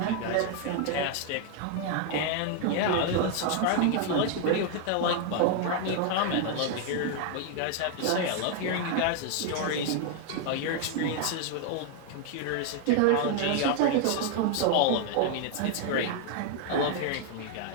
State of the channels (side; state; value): both; different; correlation 0.00